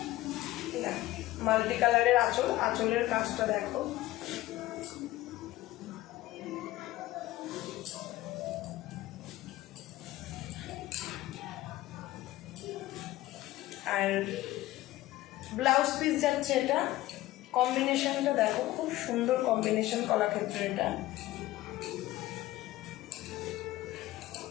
মাল্টি কালারের আঁচল। আঁচলের কাজটা দেখো, আর ব্লাউজ পিস যাচ্ছে এটা। কম্বিনেশনটা দেখো, খুব সুন্দর কম্বিনেশন কলাক্ষেত্র। এটা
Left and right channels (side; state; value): right; quieter; 16.5 dB